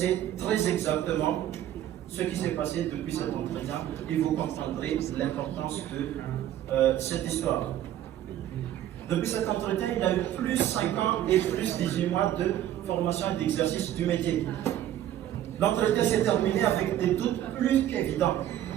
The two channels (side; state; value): left; quieter; 12.0 dB